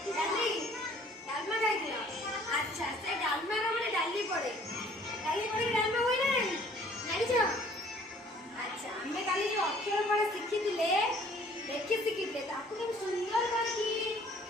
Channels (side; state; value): both; normal; correlation 0.56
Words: ଡାଲି ଡାଲମା ଖାଇଥିଲ? ଆଚ୍ଛା, ସେ ଡାଲମାର ମାନେ ଡାଲି ପଡେ, ଡାଲି ପଡିକି ଡାଲମା ହୁଏ ନା ନାହିଁ ଜାଣିଛ? ଆଚ୍ଛା, ଆମେ କାଲି ଯୋଉ ଅକ୍ଷର ଫଳ ଶିଖିଥିଲେ, ଲେଖି ଶିଖିଥିଲେ, ତାକୁ କେମିତି ସୁନ୍ଦର କରିକି